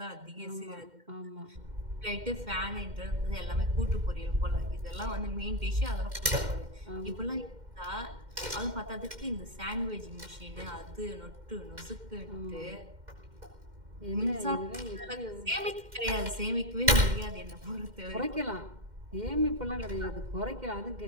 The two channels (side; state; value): left; late; 2.1 ms